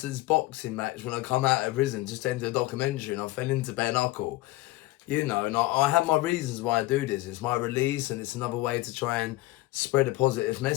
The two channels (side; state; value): right; quieter; 18.8 dB